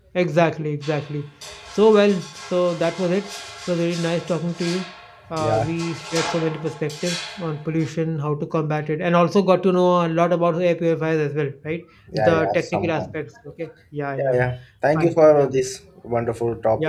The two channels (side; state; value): both; identical; correlation 1.00